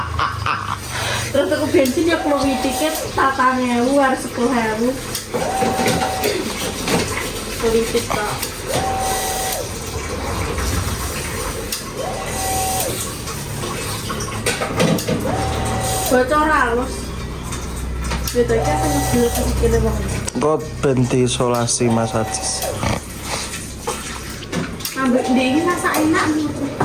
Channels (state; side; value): identical; both; correlation 1.00